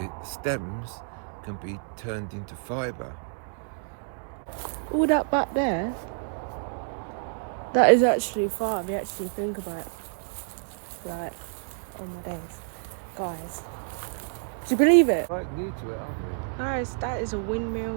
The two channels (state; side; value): silent; left; digital silence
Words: stems can be turned into fibre. All that back there, that is actually far. If you actually think about it. Like, oh my days, guys, do you believe it? Right new to it, aren't we? Guys, that is a